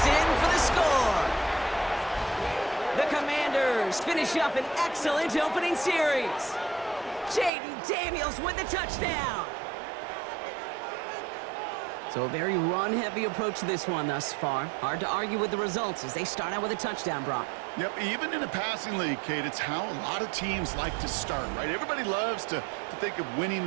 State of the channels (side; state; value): left; drops out; at 7.5 s